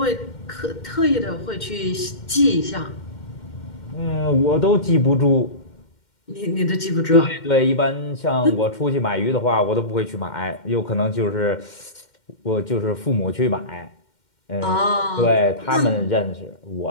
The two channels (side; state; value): right; late; 2.1 ms